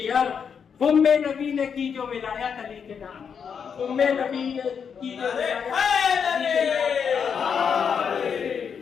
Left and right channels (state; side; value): quieter; right; 6.9 dB